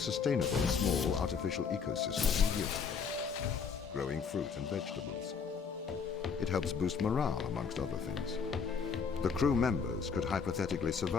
small, artificial ecosystem years ago, growing fruit and vegetables. It helps boost morale, amongst other things. The crew members could hypothetically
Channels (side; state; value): right; quieter; 5.9 dB